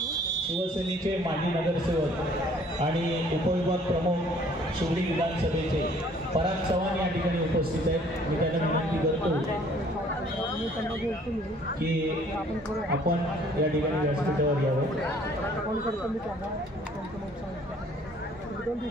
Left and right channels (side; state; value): both; normal; correlation 0.58